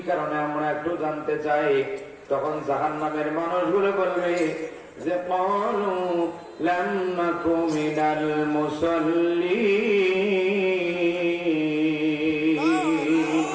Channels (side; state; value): both; identical; correlation 1.00